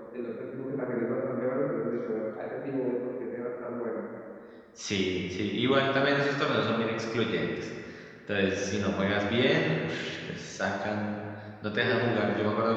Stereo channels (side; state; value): both; identical; correlation 1.00